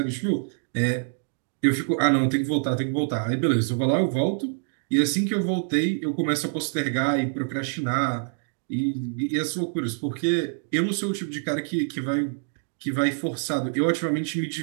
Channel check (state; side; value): silent; left; digital silence